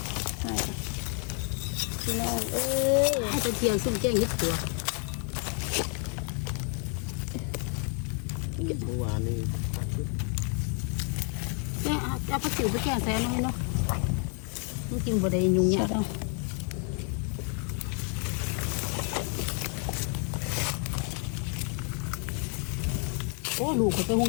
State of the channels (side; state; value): right; quieter; 39.1 dB